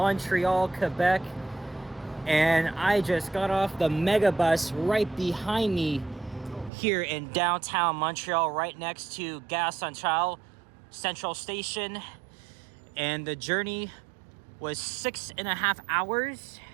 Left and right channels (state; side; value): drops out; left; at 6.7 s